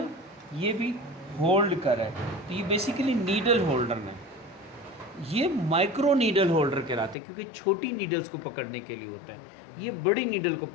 ये भी होल्ड कर रहा है, तो ये बेसिकली नीडल होल्डर है। ये माइक्रो नीडल होल्डर कहलाते हैं, क्योंकि छोटी नीडल्स को पकड़ने के लिए होता है, ये बड़ी नीडल को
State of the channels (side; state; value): right; drops out; at 7.2 s